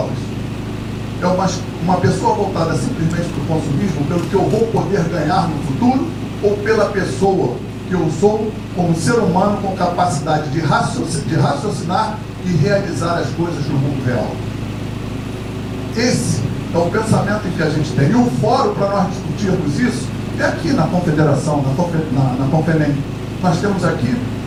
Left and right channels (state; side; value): identical; both; correlation 1.00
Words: É uma pessoa voltada simplesmente para o consumismo, pelo que eu vou poder ganhar no futuro, ou pela pessoa que eu sou como ser humano com capacidade de raciocinar e realizar as coisas no mundo real? Esse é o pensamento que a gente tem. E o fórum para nós discutirmos isso é aqui na Confederação, na Confenem. Nós temos aqui,